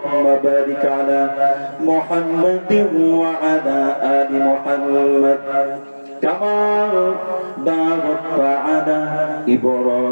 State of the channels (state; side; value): inverted; both; correlation -1.00